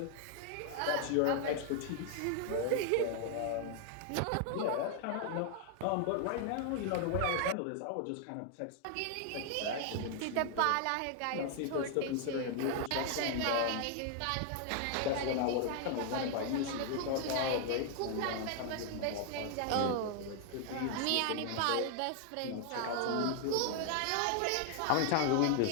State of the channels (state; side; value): different; both; correlation 0.00